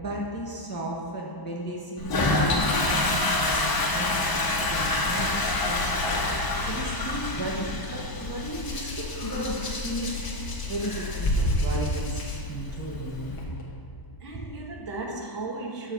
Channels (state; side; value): late; right; 1.0 ms